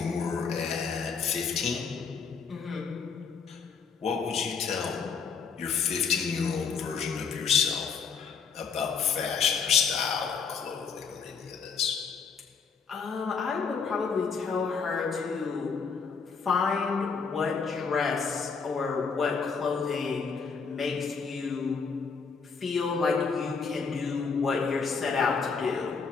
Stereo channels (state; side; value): quieter; right; 5.6 dB